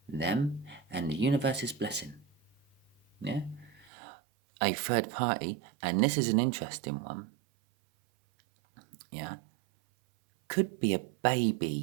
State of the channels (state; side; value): drops out; left; at 3.9 s